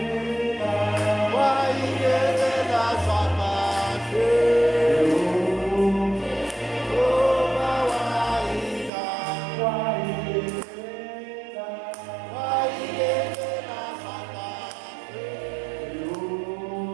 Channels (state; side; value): drops out; left; at 8.9 s